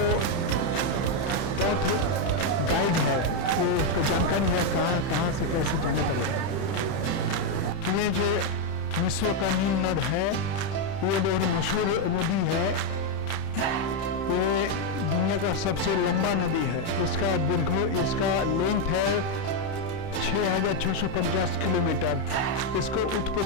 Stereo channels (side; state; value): right; late; 31 ms